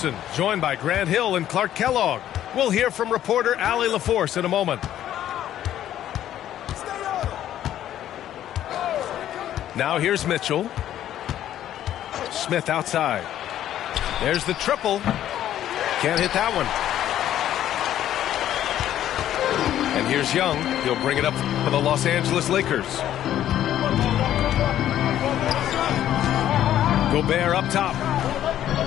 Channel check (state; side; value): quieter; right; 11.7 dB